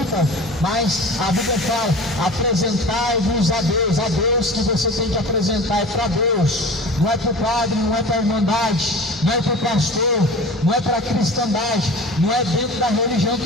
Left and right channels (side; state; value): both; normal; correlation 0.37